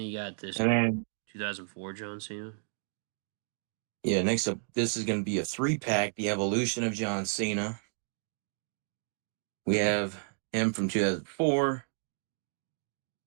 got this And then 2004 John Cena. yeah, next up, this is going to be a 3-pack. The evolution of John Cena. We have him from 2004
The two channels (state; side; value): silent; left; digital silence